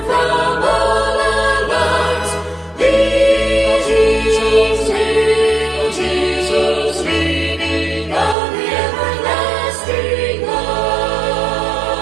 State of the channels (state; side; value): drops out; left; at 8.3 s